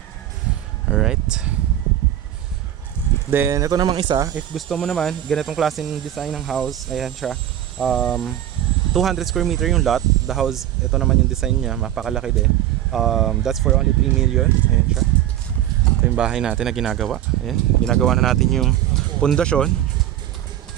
Alright. Then, ito namang isa. If gusto mo naman, ganitong klaseng design ng house. Ayan siya. 200 square meter yung lot. The house, ito naman yung design niya. Mapakalaki din. That's for only 3 million. Ayan siya. Ito yung bahay natin na ginagawa. Ayan. Ginagawa na natin yung pundasyon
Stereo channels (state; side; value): quieter; left; 12.1 dB